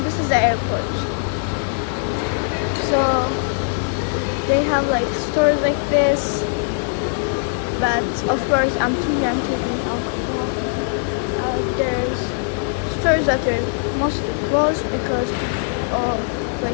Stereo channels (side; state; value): right; silent; digital silence